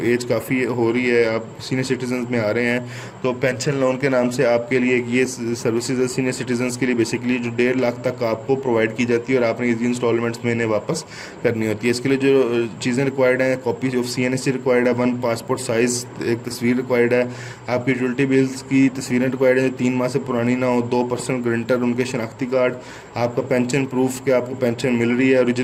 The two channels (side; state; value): both; identical; correlation 1.00